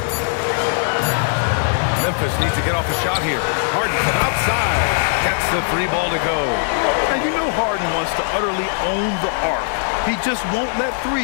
Memphis needs to get off a shot here. Harden from outside gets the 3 ball to go. And you know Harden wants to utterly own the arc. He just won't let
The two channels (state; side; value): silent; right; digital silence